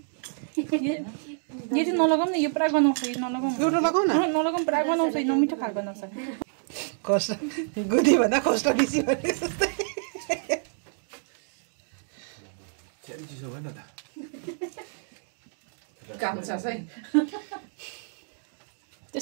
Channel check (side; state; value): left; silent; digital silence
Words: यो चाहिँ नलगाउँ न यो पुरा गनाउँछ यो नलगाउँ एउटा लगाउ न नलगाउँ पुरा गनाउँछ यो नमिठो खाल गनाउँछ कष्ट गुदी भन्दा कष्ट बेसी भने जस्तै चिसो भएन त काम छ है